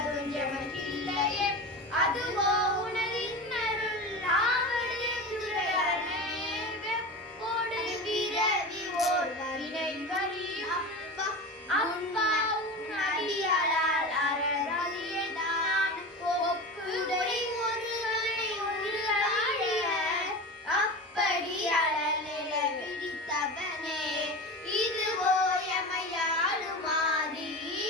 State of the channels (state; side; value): normal; both; correlation 0.28